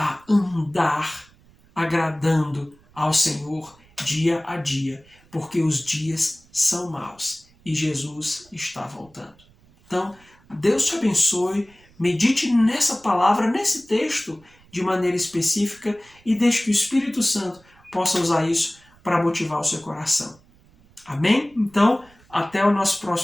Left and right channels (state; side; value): noise; right; rumble, 29 dB below the sound